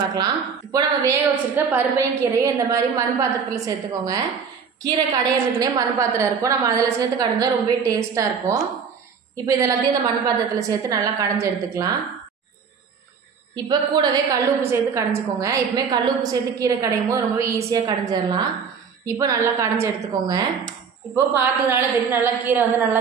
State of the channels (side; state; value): left; quieter; 6.2 dB